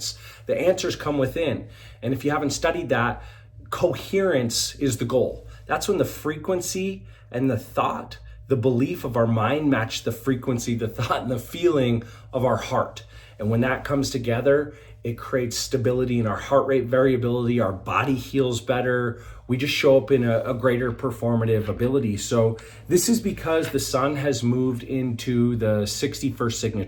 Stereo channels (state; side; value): identical; both; correlation 1.00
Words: The answers come within. And if you haven't studied that, coherence is the goal. That's when the frequency and the thought, the belief of our mind match the frequency, the thought, and the feeling of our heart. And when that comes together, it creates stability in our heart rate variability. Our body heals better. We just show up in a greater performative ability. So this is because the sun has moved into the 61st